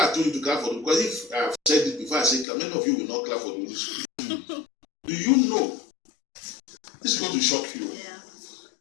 told you to clap for them because if I have said it before I say clap, many of you will not clap for the Holy Spirit. Do you know? This is going to shock you. yeah.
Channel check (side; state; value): right; drops out; at 2.5 s